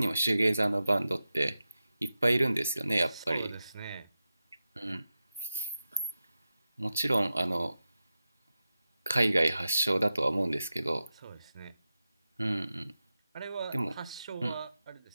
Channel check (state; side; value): inverted; both; correlation -0.93